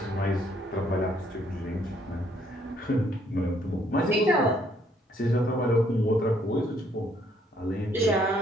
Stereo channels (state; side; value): normal; both; correlation 0.67